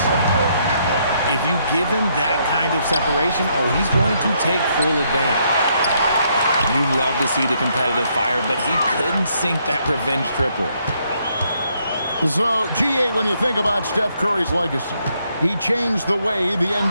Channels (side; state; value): both; inverted; correlation -0.73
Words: If you give him that kind of separation, oh, he's going to take full advantage. You love to see the competitive fire, but he couldn't sink that revenge triple. So, GA, when you think about Steph Curry's legacy, he changed the way the